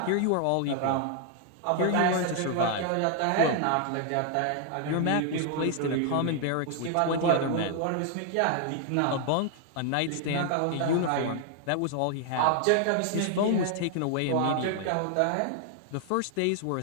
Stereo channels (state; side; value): different; both; correlation 0.00